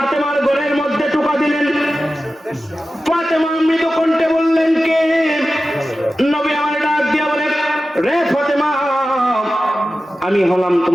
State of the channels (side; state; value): both; normal; correlation 0.94